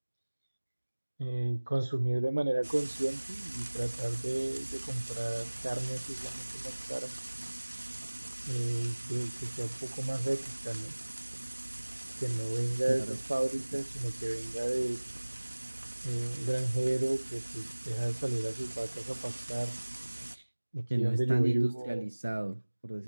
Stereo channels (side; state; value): both; inverted; correlation -1.00